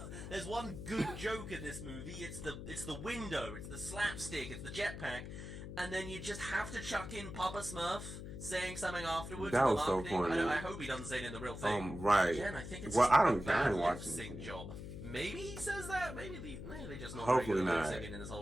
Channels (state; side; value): noise; left; hum, 9 dB below the sound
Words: one good joke in this movie. It's the window. It's the slapstick. It's the jetpack. And then you just have to chuck in Papa Smurf saying something afterwards. That was so corny. I hope he doesn't say it in the real thing. Right. Again, I think it's well, just I don't bad watch lip-sync job. Maybe he says that. Maybe they just not Hopefully very good at not. singing in this